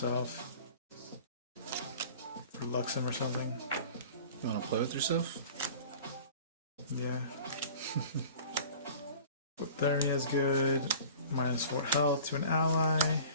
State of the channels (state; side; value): inverted; both; correlation -0.44